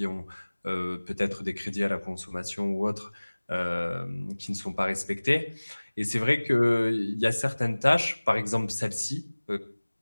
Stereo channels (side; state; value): both; inverted; correlation -1.00